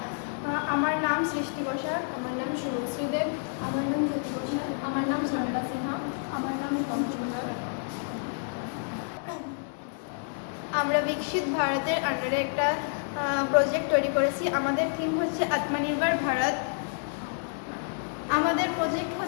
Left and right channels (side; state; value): right; silent; digital silence